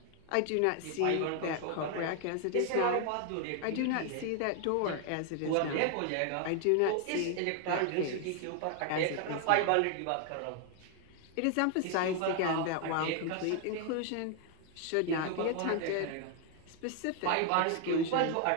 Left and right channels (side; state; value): both; different; correlation 0.00